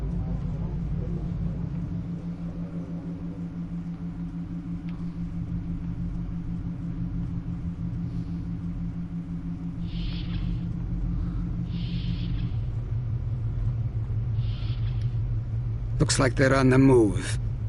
Looks like they're on the move.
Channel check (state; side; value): identical; both; correlation 1.00